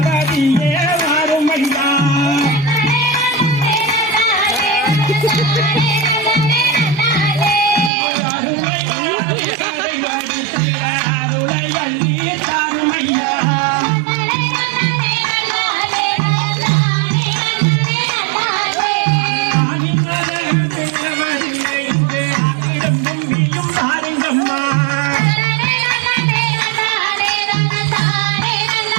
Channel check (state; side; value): drops out; left; at 7.9 s